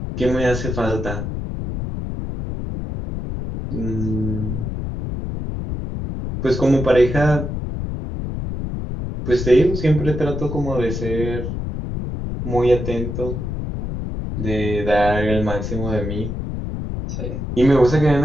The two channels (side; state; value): left; noise; rumble, 5 dB below the sound